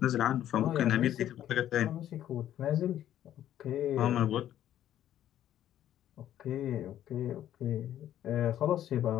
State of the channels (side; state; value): right; quieter; 11.7 dB